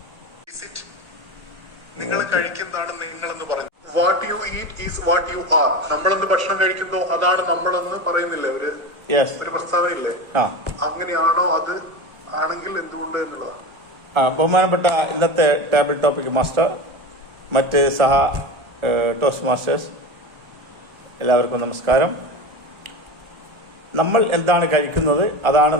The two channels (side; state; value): left; late; 1.2 ms